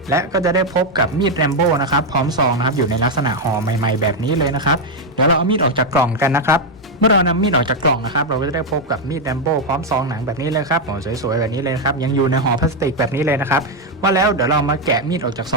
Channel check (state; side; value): normal; both; correlation 0.03